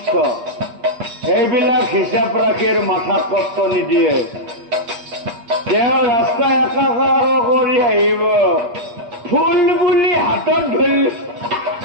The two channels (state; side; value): late; left; 8.4 ms